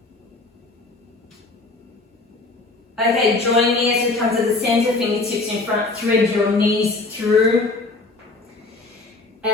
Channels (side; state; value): right; quieter; 3.4 dB